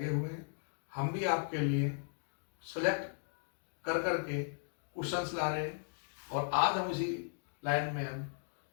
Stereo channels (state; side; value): silent; right; digital silence